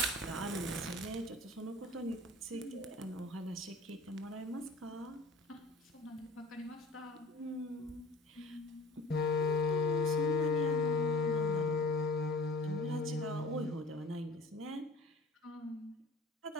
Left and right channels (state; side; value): normal; both; correlation 0.45